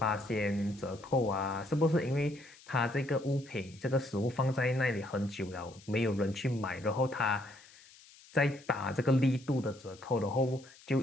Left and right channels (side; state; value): left; noise; hiss, 23 dB below the sound